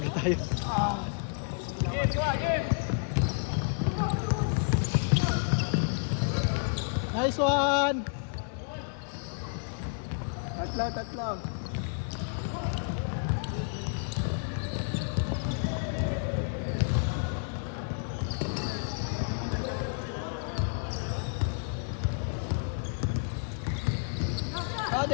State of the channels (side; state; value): right; silent; digital silence